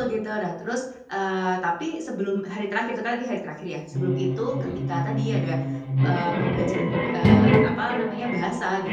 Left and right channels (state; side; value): identical; both; correlation 1.00